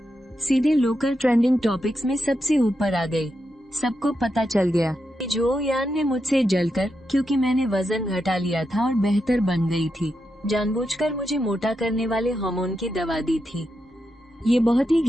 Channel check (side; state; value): both; normal; correlation 0.86